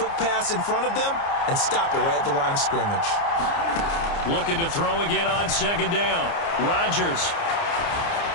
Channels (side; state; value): right; late; 29 ms